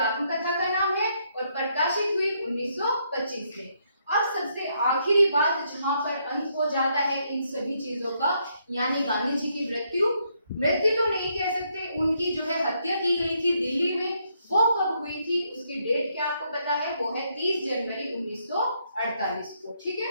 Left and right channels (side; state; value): both; inverted; correlation -0.74